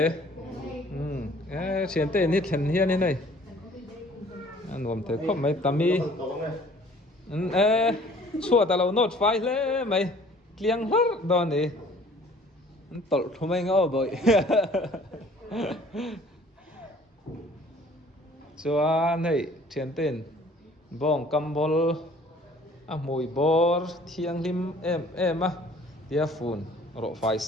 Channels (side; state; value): both; normal; correlation 0.53